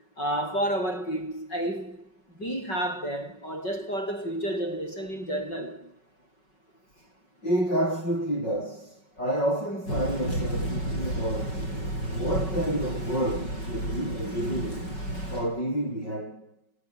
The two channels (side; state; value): right; late; 5.4 ms